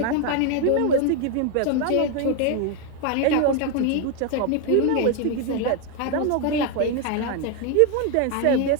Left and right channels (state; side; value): different; both; correlation 0.01